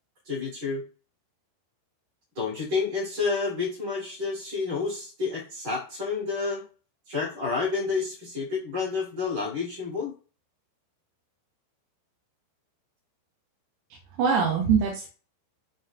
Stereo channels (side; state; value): left; late; 13 ms